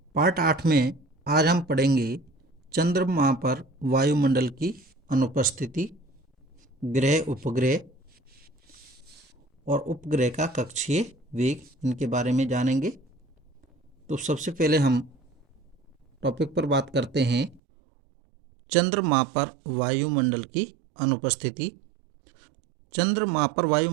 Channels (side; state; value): left; drops out; at 17.6 s